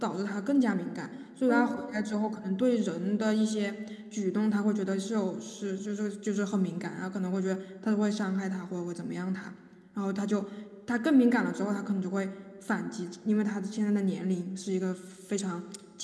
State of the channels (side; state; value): both; identical; correlation 1.00